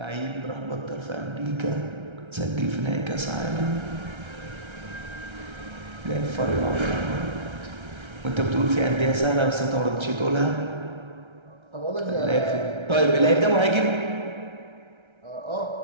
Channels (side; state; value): left; late; 1.3 ms